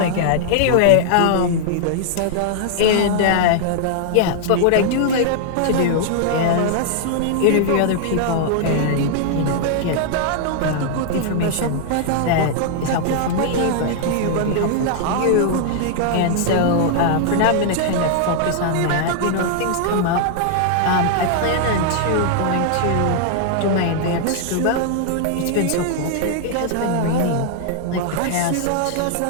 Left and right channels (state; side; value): different; both; correlation -0.01